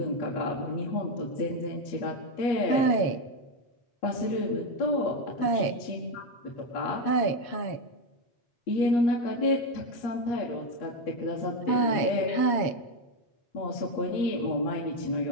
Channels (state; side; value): late; right; 7.3 ms